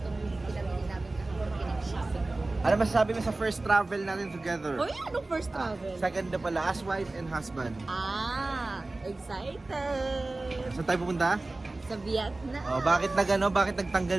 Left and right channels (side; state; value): left; quieter; 3.1 dB